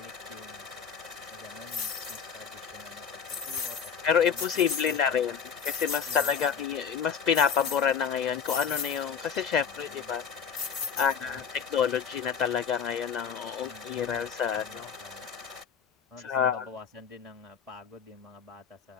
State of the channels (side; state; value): right; quieter; 7.1 dB